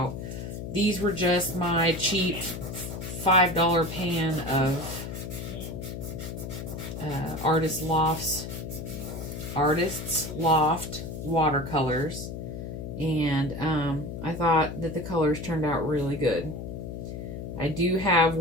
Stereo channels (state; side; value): noise; left; hum, 7 dB below the sound